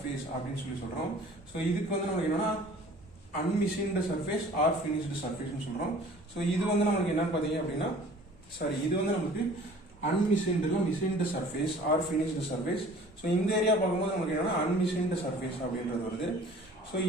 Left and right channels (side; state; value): both; normal; correlation 0.49